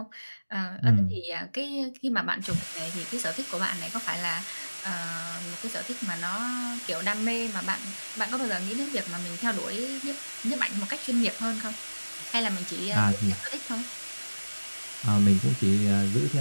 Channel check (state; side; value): inverted; both; correlation -1.00